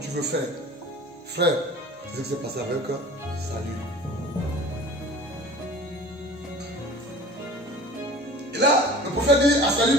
veux faire. Frère, c'est ce qui s'est passé avec Saül. Et là, le prophète dit à Saül,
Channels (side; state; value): both; normal; correlation 0.42